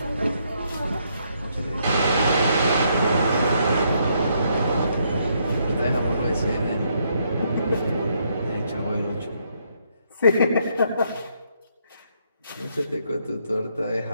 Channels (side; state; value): both; inverted; correlation -0.74